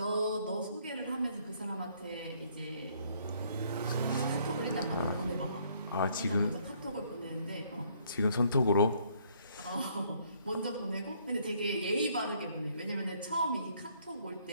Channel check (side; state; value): both; inverted; correlation -0.65